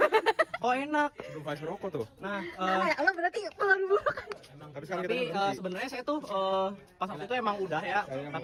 Kok enak. Belum kasih rokok tuh. Nah, Lo berarti pengaruh buruk. Tapi sekarang kita tapi sebenarnya saya tuh pas waktu itu emang udah ya,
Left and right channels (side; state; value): both; identical; correlation 1.00